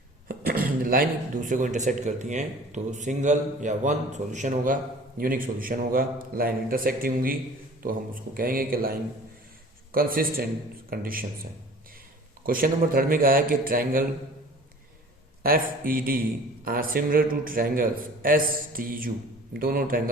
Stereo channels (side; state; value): both; normal; correlation 0.46